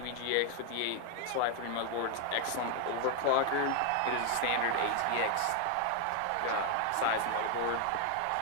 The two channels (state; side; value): different; both; correlation 0.00